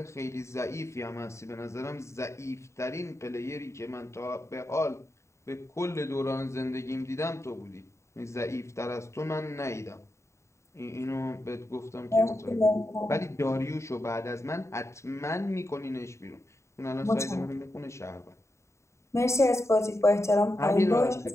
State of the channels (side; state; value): right; late; 0.14 ms